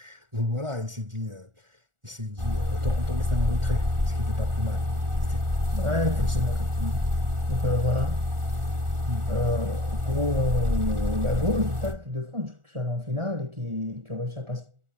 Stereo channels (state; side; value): late; left; 1.4 ms